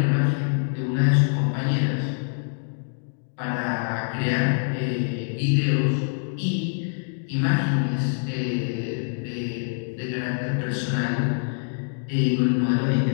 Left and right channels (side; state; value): right; silent; digital silence